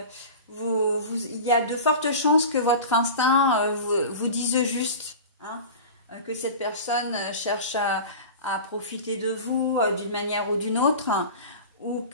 il y a de fortes chances que votre instinct vous dise juste, hein, que cette personne cherche à profiter de vous d'une manière ou d'une autre, ou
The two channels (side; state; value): both; inverted; correlation -0.33